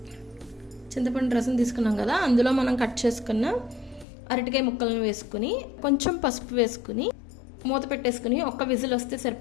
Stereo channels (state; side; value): drops out; right; at 4.0 s